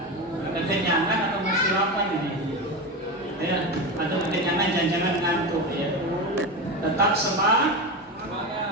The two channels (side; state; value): both; normal; correlation 0.20